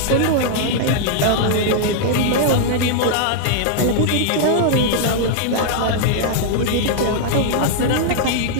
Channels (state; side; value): different; both; correlation -0.01